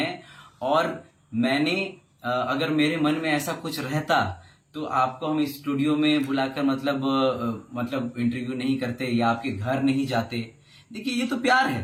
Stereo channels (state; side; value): identical; both; correlation 1.00